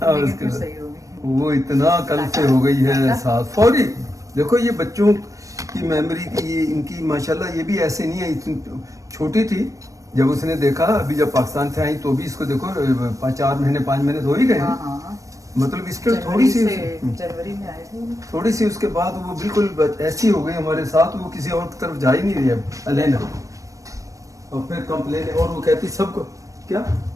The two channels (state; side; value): late; left; 0.16 ms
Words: फिर सही हो गई। वो इतना कल से हो गई है साथ फौरी। देखो ये बच्चों की मेमोरी की, ये इनकी माशाल्लाह, ये भी ऐसे नहीं है, इतनी छोटी थी जब उसने देखा, अभी जब पाकिस्तान से आई तो भी इसको देखो 4 महीने 5 महीने तो हो ही गए। मतलब इसके थोड़ी सी जनवरी में आए थे, थोड़ी सी उसके बाद वो बिल्कुल ऐसी हो गई हमारे साथ, वो किसी और तरफ जा ही नहीं रही अब अलेना। और फिर कंप्लेन, और वो कहती सबको क्या